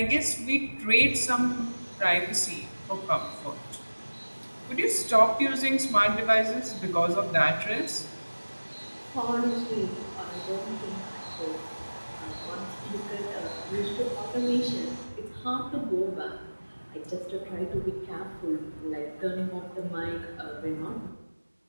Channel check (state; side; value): inverted; both; correlation -1.00